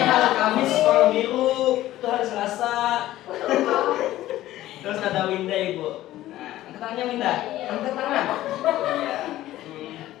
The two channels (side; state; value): right; quieter; 14.8 dB